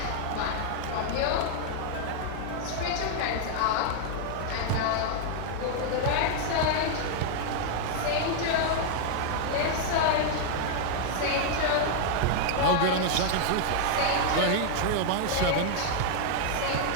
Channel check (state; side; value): different; both; correlation 0.00